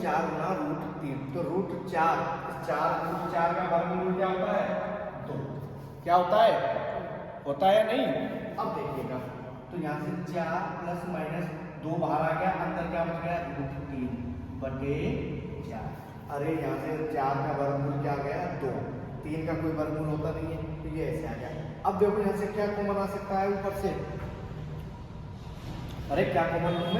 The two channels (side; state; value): both; identical; correlation 1.00